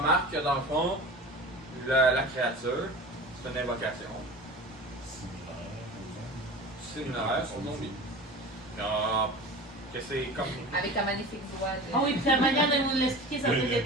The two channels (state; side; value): normal; both; correlation 0.36